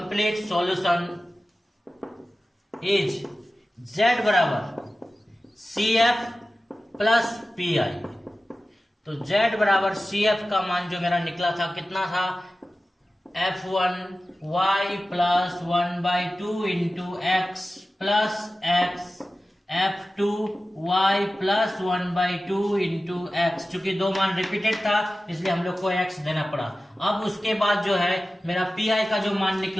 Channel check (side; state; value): both; normal; correlation 0.95